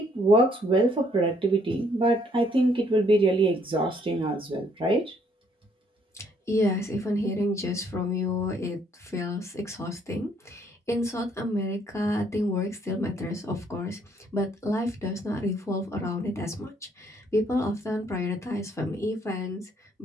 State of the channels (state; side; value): normal; both; correlation 0.67